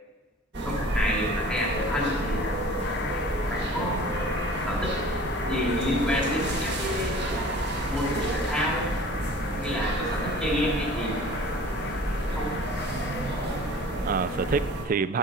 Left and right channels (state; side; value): normal; both; correlation 0.45